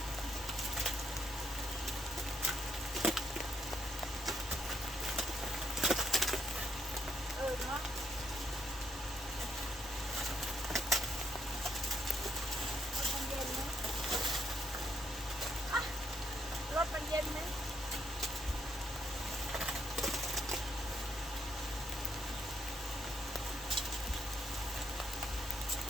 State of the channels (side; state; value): both; normal; correlation 0.74